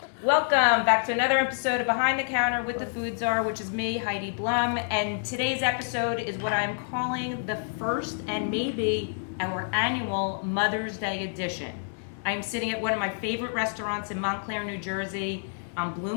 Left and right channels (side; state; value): right; silent; digital silence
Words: Welcome back to another episode of Behind the Counter with the Food Czar, which is me, Heidi Blum. And today's episode is what I'm calling the first and maybe our annual Mother's Day edition. I'm sitting at one of my favorite restaurants in Montclair, New Jersey, on